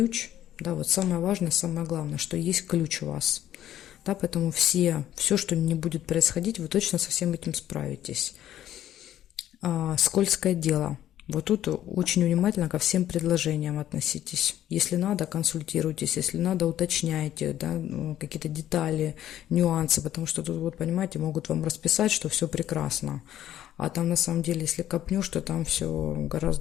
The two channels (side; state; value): right; quieter; 12.0 dB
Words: Да, вот самое важное, самое главное, что есть ключ у вас. Да, поэтому все, что не будет происходить, вы точно со всем этим справитесь. Скользкое дело. Вот тут очень внимательно ко всем предложениям относитесь. Если надо, консультируйтесь, если надо, уточняйте, да, какие-то детали, нюансы, потому что тут, вот, понимаете, могут вам расписать, что все прекрасно. А там на самом деле, если копнешь, то там все